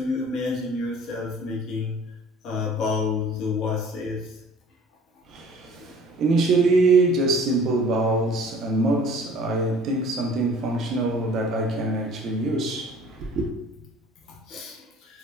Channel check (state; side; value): normal; both; correlation 0.50